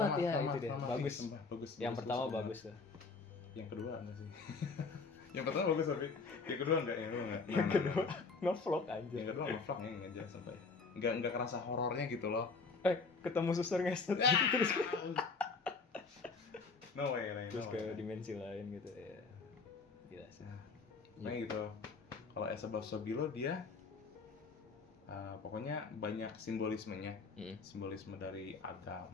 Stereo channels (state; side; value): quieter; right; 4.4 dB